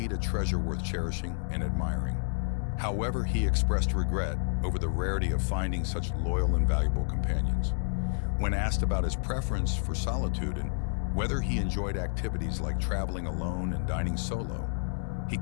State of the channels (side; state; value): right; silent; 58 dB below the other